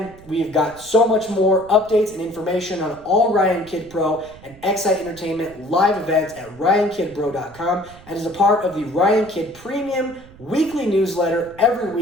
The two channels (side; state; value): right; noise; rumble, 22 dB below the sound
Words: we've got so much more updates and information on all Ryan Kidd Pro and XSite Entertainment live events at ryankidbro.com and as a part of the Ryan Kidd Premium weekly newsletter every